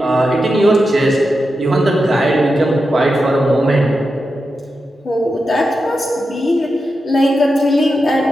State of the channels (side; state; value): both; normal; correlation 0.89